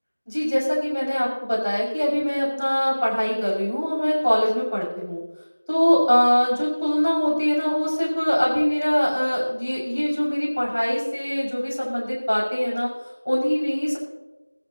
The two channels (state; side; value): inverted; both; correlation -1.00